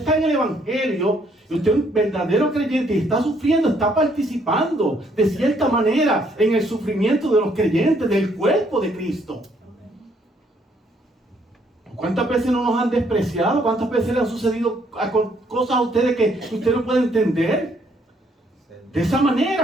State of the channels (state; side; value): normal; both; correlation 0.68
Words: en el Evangelio, y usted es un verdadero creyente y está sufriendo, está participando de cierta manera en el sufrimiento de los creyentes, del cuerpo de Cristo. ¿Cuántas veces no nos han despreciado? ¿Cuántas veces le han sucedido cosas a ustedes que usted no puede entender? De esa